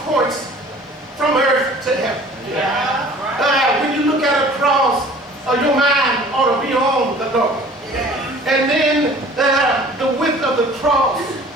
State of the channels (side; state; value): both; normal; correlation 0.48